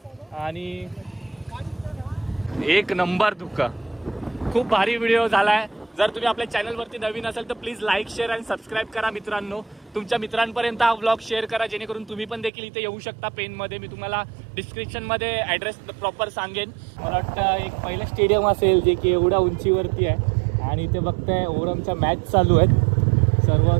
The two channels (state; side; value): drops out; left; at 12.5 s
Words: आणि एक नंबर धुकं. खूप भारी व्हिडिओ झालाय. जर तुम्ही आपल्या चॅनलवरती नवीन असाल तर प्लीज लाईक, शेअर आणि सबस्क्राईब करा मित्रांनो. तुमच्या मित्रांपर्यंत हा व्लॉग शेअर करा जेणेकरून तुम्ही पण देखील इथे येऊ शकता पेनमध्ये. मी तुम्हाला डिस्क्रिप्शनमध्ये ॲड्रेस प्रॉपर सांगेन. मला वाटतं एक पहिलं स्टेडियम असेल जे की एवढ्या उंचीवरती आहे आणि इथे बघताय ओरमच्या मॅच चालू आहेत. सर्व